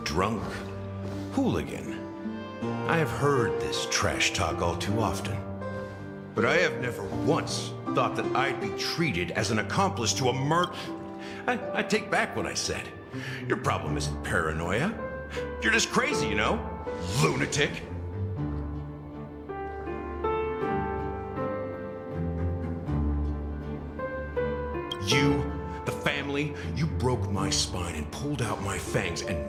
drunk, hooligan. I have heard this trash talk all too often. But I have never once thought that I'd be treated as an accomplice to a murder. I take back what I said. Your problem isn't paranoia. You're just crazy, you know? Lunatic. You, the family, you broke my spine and pulled out my fangs, and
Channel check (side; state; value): both; identical; correlation 1.00